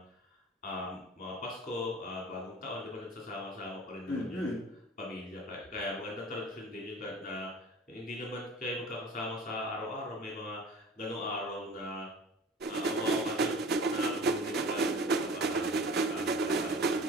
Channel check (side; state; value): both; normal; correlation 0.42